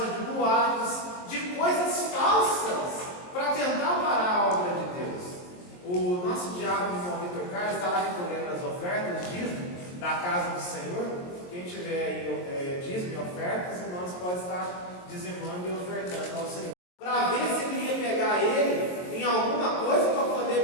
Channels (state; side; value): late; right; 22 ms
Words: de boatos, de coisas falsas, para tentar parar a obra de Deus. O nosso diácono, irmão Vitor Carlos, está lá recolhendo as ofertas, dízimo, da casa do Senhor. Quem tiver aí dízimo e ofertas, irmãos, pode estar dizimando e ofertando ao Senhor. Para ver se ele ia pegar ele em alguma coisa para poder